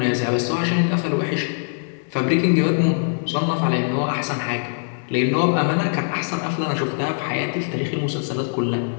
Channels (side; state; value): right; silent; digital silence